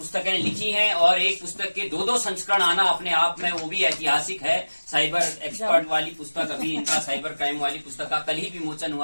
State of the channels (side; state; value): both; inverted; correlation -1.00